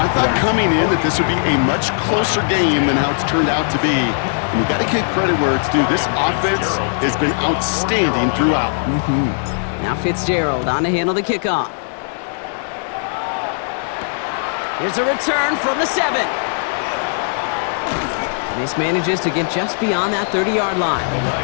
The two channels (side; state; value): right; silent; digital silence